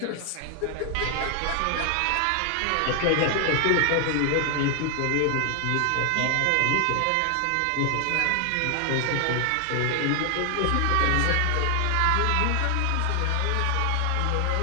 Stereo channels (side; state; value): both; different; correlation 0.00